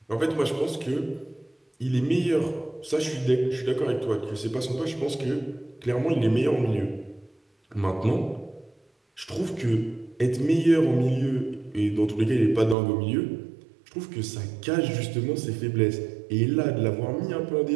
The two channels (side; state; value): left; drops out; at 12.8 s